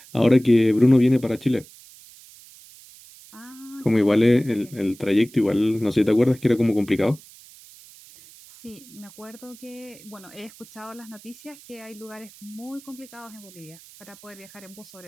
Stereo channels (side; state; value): right; noise; hiss, 22 dB below the sound